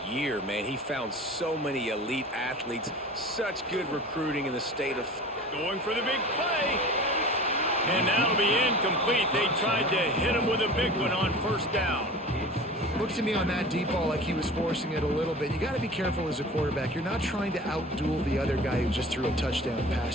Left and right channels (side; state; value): both; normal; correlation 0.38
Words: year, man. He found so many elite athletes, such good recruiting in the state of... Going for the big play. And that'll be incomplete. They tried to hit him with a big one on 1st down. Looked to me on that deep ball like he was forcing it a little bit. You got to be careful as a quarterback. You're not trying to outduel the other guy who just threw a touchdown